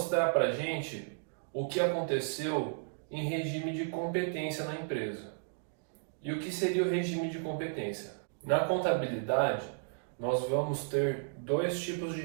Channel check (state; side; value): silent; left; digital silence